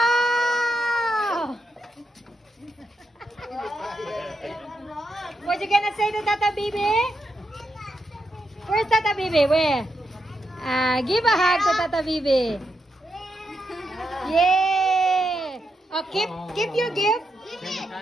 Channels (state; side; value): normal; both; correlation 0.83